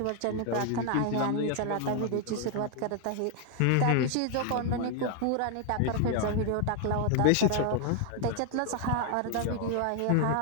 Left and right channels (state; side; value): different; both; correlation 0.00